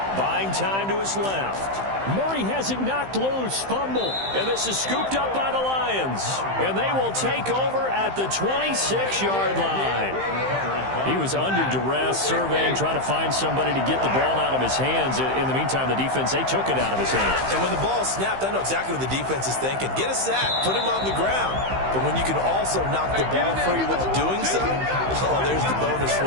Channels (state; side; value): late; left; 15 ms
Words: Buying time to his left. Murray has it knocked loose, fumble. And this is scooped up by the Lions. And they will take over at the 26-yard line. He was under duress, surveying, trying to find somebody to get the ball out of his hands. In the meantime, the defense, they took it out of his hands. And when the ball snapped, I know exactly what the defense is thinking. Get a sack, put him on the ground. But when you can also knock the ball free while doing so, oh, there's the bonus for